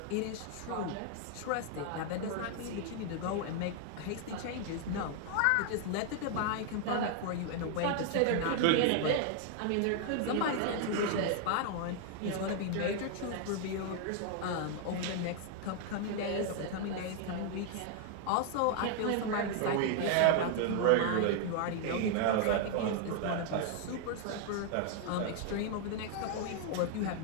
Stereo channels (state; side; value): different; both; correlation 0.00